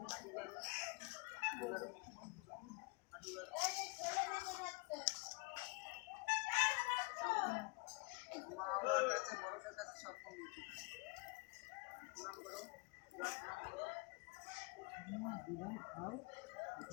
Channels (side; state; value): right; quieter; 27.3 dB